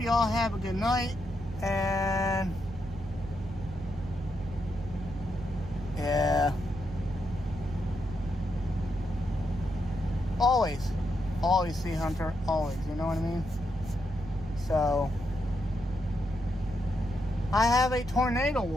you all have a good night. And yeah. Always Sea Hunter, always, you know what I mean? So, I have a tornado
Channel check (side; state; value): right; noise; hum, 13 dB below the sound